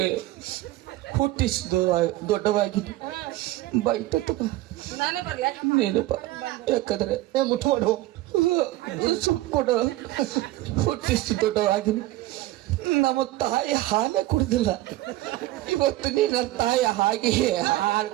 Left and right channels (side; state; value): left; quieter; 16.7 dB